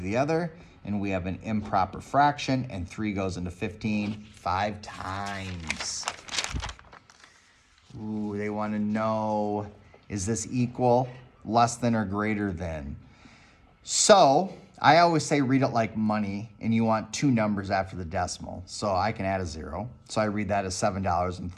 other. And we have an improper fraction. And 3 goes into 15 5 times. Ooh, they want to know, is this equal, less than, or greater than? So I always say read it like money, and you want two numbers after the decimal. So I can add a 0. So I read that as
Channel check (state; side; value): identical; both; correlation 1.00